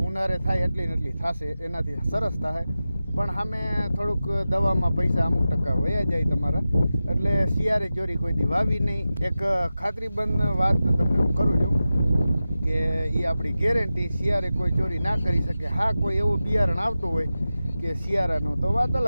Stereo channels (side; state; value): both; inverted; correlation -0.94